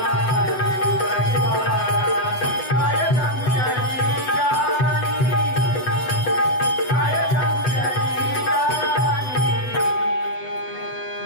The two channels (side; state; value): right; late; 8.0 ms